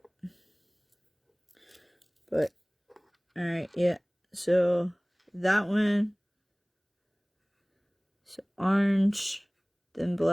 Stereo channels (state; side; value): identical; both; correlation 1.00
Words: But, alright, yeah. So, that one. So, orange, then